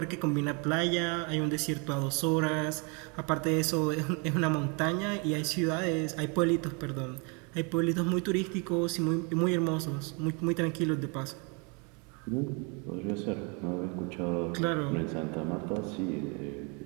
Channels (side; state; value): left; quieter; 33.4 dB